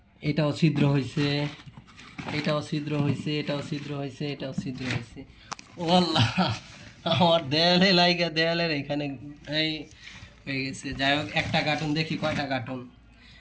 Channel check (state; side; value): identical; both; correlation 1.00